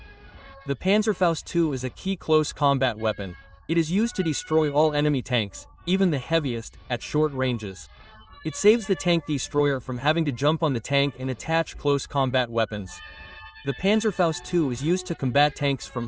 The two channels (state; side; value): identical; both; correlation 1.00